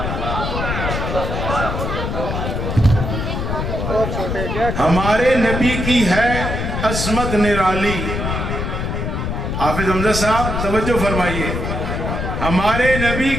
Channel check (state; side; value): noise; left; rumble, 2 dB below the sound